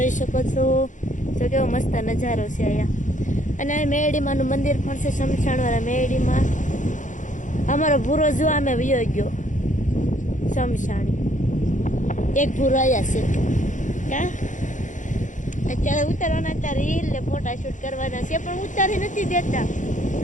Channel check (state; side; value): late; right; 0.36 ms